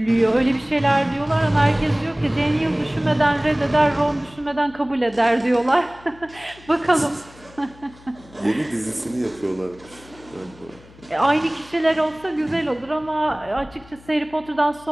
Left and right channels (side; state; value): left; noise; hum, 23 dB below the sound